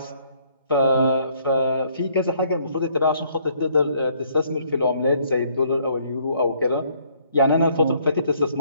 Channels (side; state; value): both; inverted; correlation -0.65